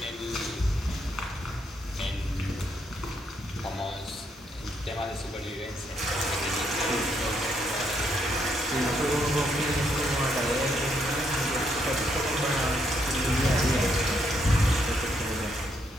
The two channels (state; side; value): normal; both; correlation 0.75